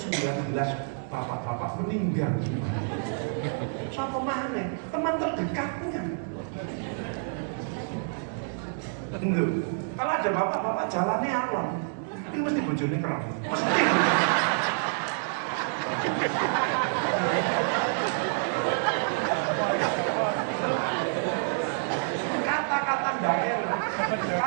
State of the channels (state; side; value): silent; left; digital silence